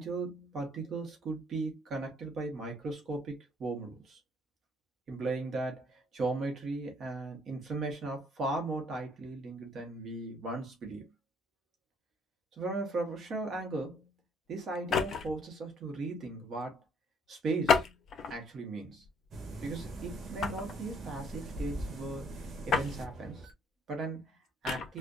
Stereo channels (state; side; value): normal; both; correlation 0.64